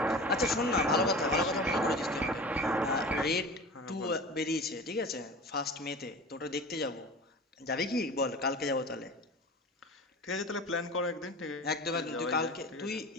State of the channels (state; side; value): normal; both; correlation 0.35